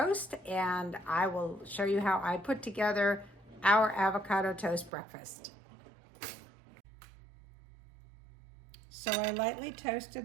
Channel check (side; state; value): left; drops out; at 4.9 s